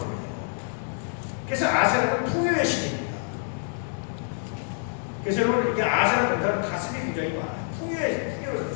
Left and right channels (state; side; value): silent; right; digital silence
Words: 그래서 아세라는 풍요의 신입니다. 그래서 여러분, 이게 아세라 동사는 가슴이 굉장히 많아요. 풍요를